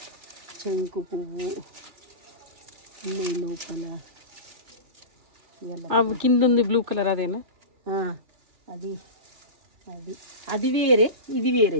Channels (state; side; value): late; left; 3.0 ms